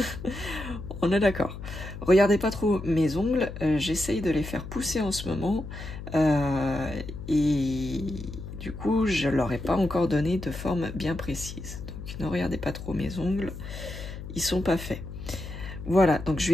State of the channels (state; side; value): noise; left; hum, 10 dB below the sound